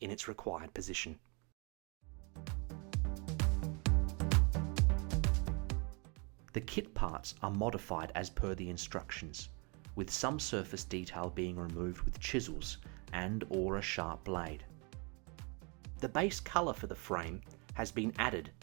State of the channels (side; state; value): left; quieter; 32.4 dB